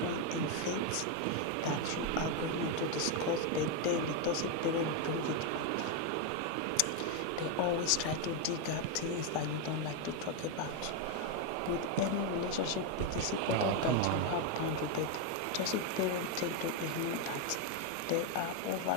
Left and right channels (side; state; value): both; different; correlation 0.02